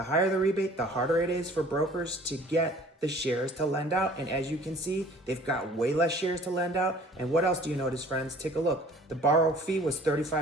higher the rebate, the harder it is for brokers to get the shares to lend out. And as you can see, they've got way less shares to lend out. And what else do you notice, friends? Take a look. The borrow fee was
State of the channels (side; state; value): both; normal; correlation 0.51